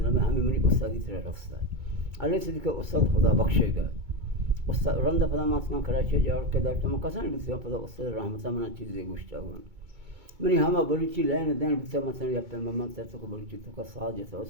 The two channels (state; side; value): late; left; 2.2 ms